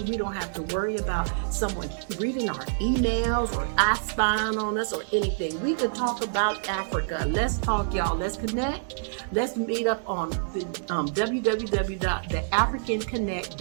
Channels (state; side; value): silent; left; digital silence